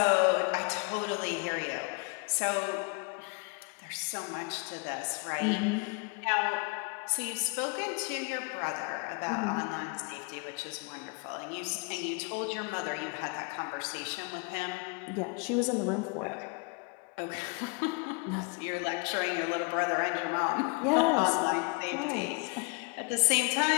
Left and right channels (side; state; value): right; quieter; 32.8 dB